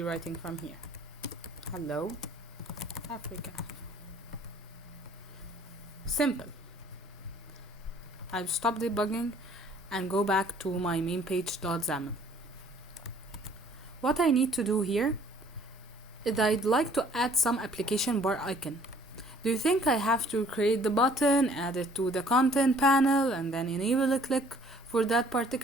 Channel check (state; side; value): normal; both; correlation 0.57